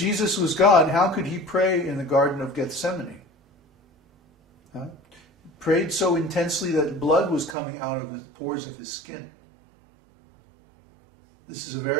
was God, how could he pray in the Garden of Gethsemane? Huh? Prayed so intensely that blood was coming out of the pores of his skin. This is a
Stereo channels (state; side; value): drops out; left; at 7.6 s